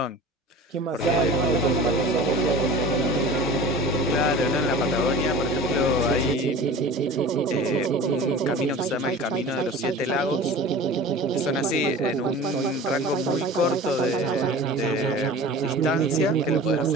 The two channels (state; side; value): normal; both; correlation 0.38